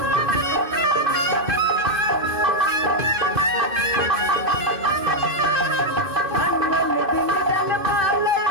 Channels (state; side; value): late; left; 2.6 ms